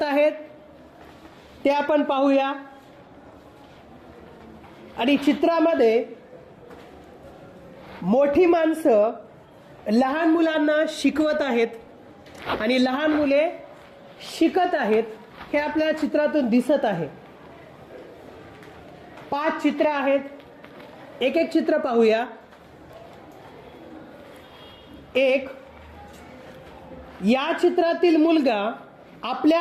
आहेत ते आपण पाहूया। आणि चित्रामध्ये मोठी माणसं लहान मुलांना शिकवत आहेत आणि लहान मुले शिकत आहेत हे आपल्याला चित्रातून दिसत आहे। 5 चित्र आहेत, एक एक चित्र पाहूया। 1 या चित्रातील मुलगा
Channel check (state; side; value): identical; both; correlation 1.00